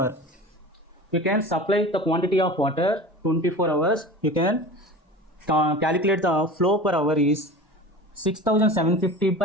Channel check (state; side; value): normal; both; correlation 0.35